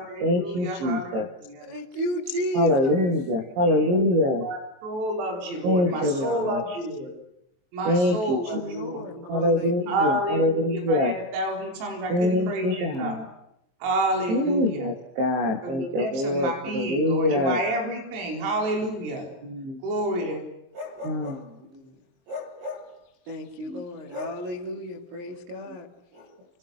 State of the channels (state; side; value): late; left; 23 ms